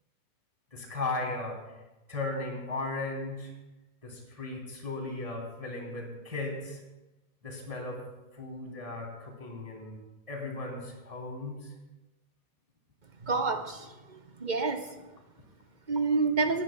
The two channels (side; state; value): left; late; 2.2 ms